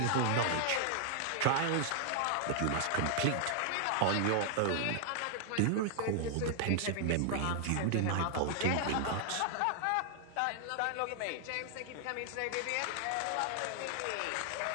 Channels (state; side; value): different; both; correlation 0.00